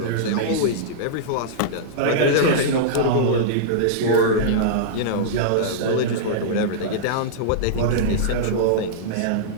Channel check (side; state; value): both; different; correlation -0.03